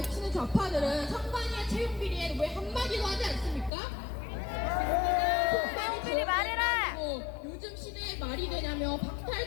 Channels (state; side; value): drops out; right; at 3.7 s